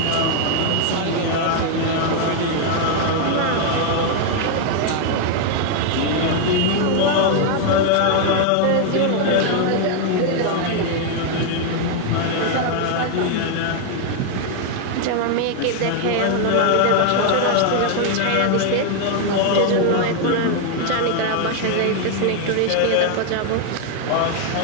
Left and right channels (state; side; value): different; both; correlation 0.00